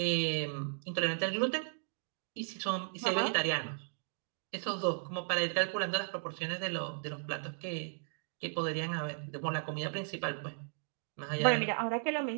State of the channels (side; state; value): left; silent; digital silence